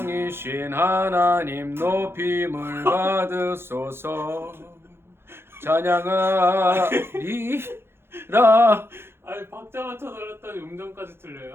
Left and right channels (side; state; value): left; late; 0.11 ms